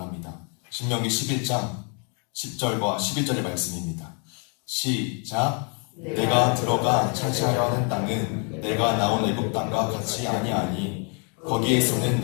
신명기 11장 10절과 11절의 말씀입니다. 시작. 내가 들어가 차지하려 하는 땅은 내가 나온 애굽 땅과 같이 아니하니 거기에서는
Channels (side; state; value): right; quieter; 38.5 dB